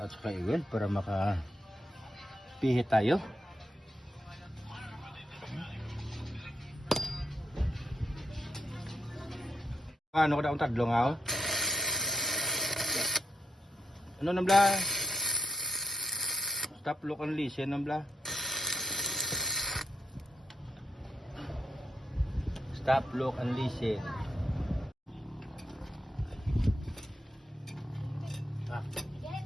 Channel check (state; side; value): normal; both; correlation 0.84